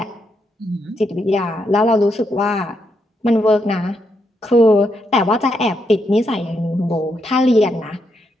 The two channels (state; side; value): normal; both; correlation 0.80